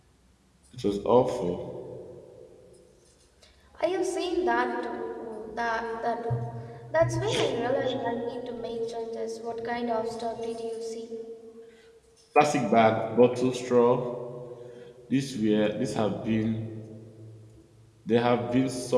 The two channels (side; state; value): both; identical; correlation 1.00